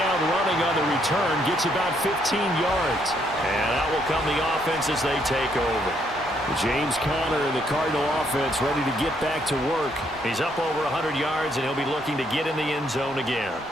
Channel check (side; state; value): both; normal; correlation 0.72